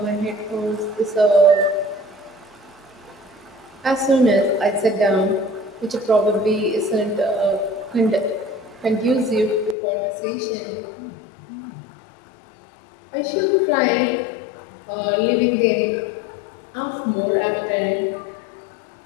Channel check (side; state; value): right; drops out; at 9.8 s